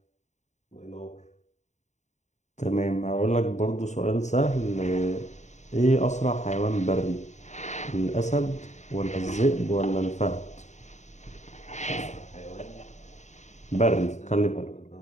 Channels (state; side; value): late; right; 0.34 ms